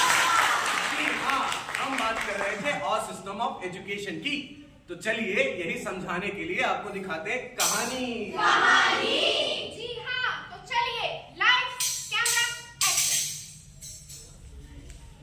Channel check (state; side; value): identical; both; correlation 1.00